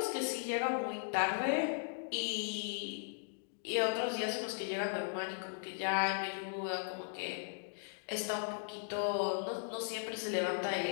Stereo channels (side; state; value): right; silent; digital silence